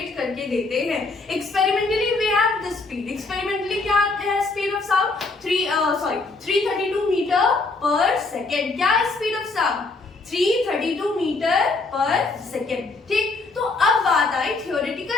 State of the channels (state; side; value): quieter; right; 3.6 dB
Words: करके देते हैं। Experimentally we have the speed. Experimentally क्या है speed of sound? 332 metre per second. क्या है speed of sound? 332 metre per second. ठीक, तो अब बात आई